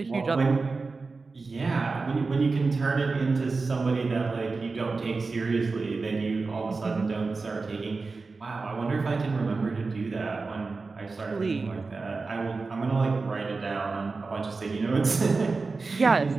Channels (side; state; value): left; quieter; 4.0 dB